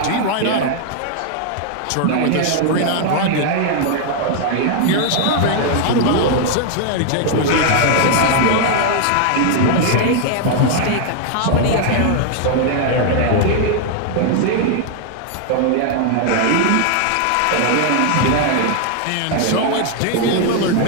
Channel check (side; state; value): both; different; correlation 0.00